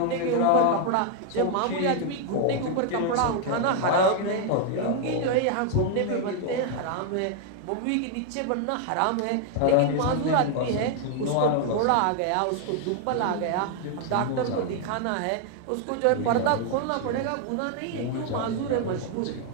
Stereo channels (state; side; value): different; both; correlation 0.00